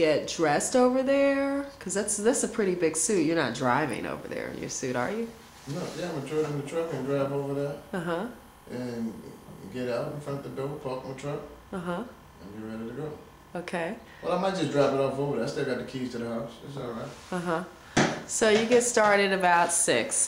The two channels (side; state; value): both; identical; correlation 1.00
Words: dressed over there? Because that's a pretty big suit. You're not driving over there in your suit, are you? No, yeah, I'm gonna throw it in the truck and drive over there. Uh-huh. And get out in front of the door, park my truck. Uh-huh. And be ready to go. Okay. Well, I might just drop it off over there. I still got the keys to the house. It's all right. Uh-huh. So you get started about